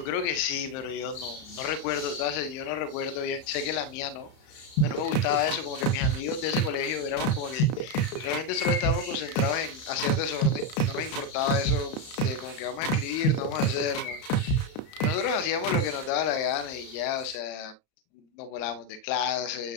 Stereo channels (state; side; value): late; right; 32 ms